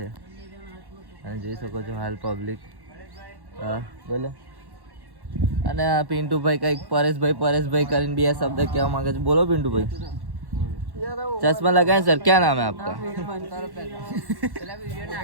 અને જોઈ શકો છો હાલ પબ્લિક. હા બોલો. અને આ પિન્ટુભાઈ કંઈક પરેશભાઈ કરીને 2 શબ્દ કહેવા માંગે છે. બોલો પિન્ટુભાઈ. चश्मा लगाए सर, क्या नाम है आपका?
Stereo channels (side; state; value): left; late; 1.1 ms